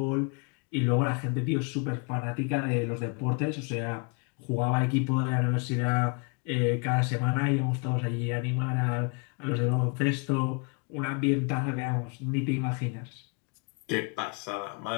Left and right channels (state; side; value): quieter; right; 34.3 dB